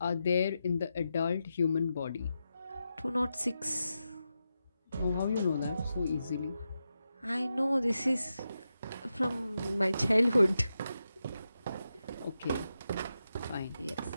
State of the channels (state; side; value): inverted; both; correlation -0.88